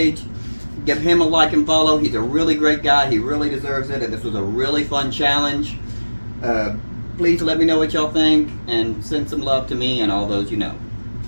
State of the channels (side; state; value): both; inverted; correlation -1.00